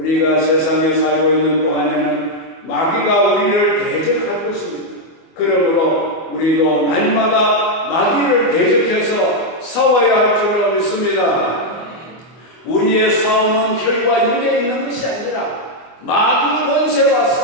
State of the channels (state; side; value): late; right; 24 ms